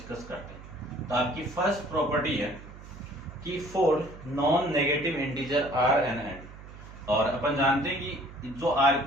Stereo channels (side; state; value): right; noise; hum, 16 dB below the sound